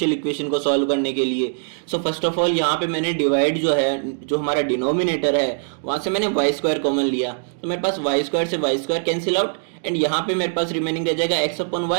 इक्वेशन को सॉल्व करने के लिए। सो फर्स्ट ऑफ ऑल यहाँ पे मैंने डिवाइड जो है, जो हमारा डिनोमिनेटर है वहां से मैंने वाई स्क्वायर कॉमन लिया, तो मेरे पास वाई स्क्वायर से y square cancel out and यहाँ पे मेरे पास रिमेनिंग रह जाएगा एक्स अपॉन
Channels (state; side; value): silent; left; digital silence